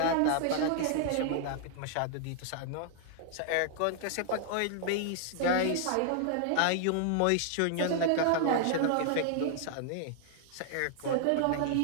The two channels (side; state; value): both; different; correlation 0.00